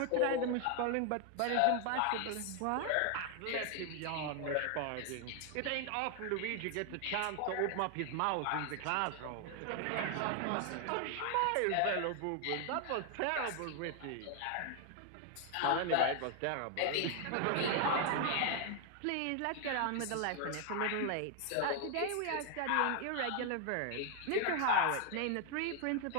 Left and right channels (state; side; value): different; both; correlation 0.00